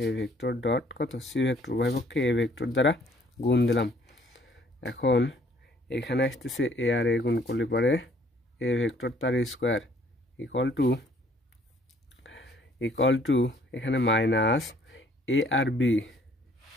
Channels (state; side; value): normal; both; correlation 0.60